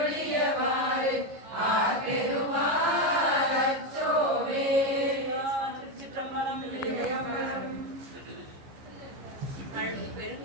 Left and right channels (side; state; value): left; late; 15 ms